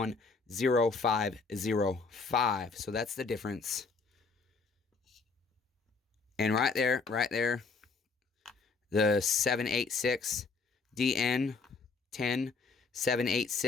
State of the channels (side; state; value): right; quieter; 4.5 dB